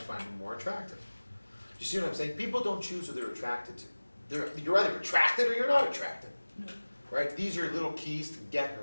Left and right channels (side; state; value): both; inverted; correlation -1.00